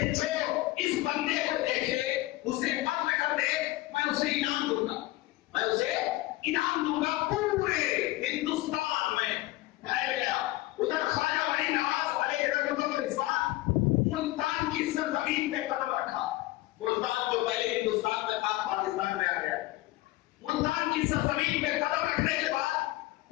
جو اس بندے کو دیکھے اسے قتل کر دے، میں اسے انعام دوں گا، میں اسے انعام دوں گا۔ پورے ہندوستان میں پھیل گیا۔ ادھر خواجہ غریب نواز علیہ رحمت و رضوان ملتان کی سرزمین پہ قدم رکھا، ملتان جو پہلے ہندوستان میں تھا پاکستان میں آ گیا، ملتان کی سرزمین پہ قدم رکھنے کے بعد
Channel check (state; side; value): quieter; right; 18.4 dB